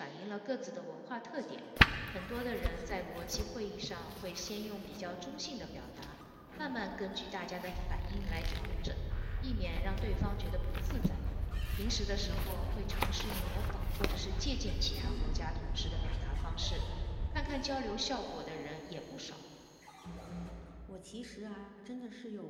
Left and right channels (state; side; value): identical; both; correlation 1.00